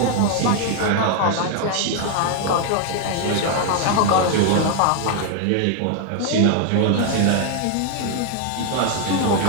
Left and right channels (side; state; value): both; different; correlation 0.01